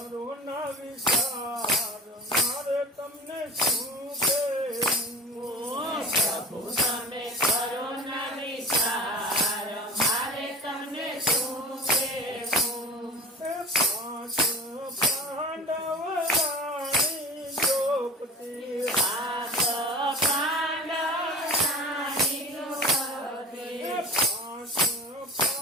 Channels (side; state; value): both; normal; correlation 0.36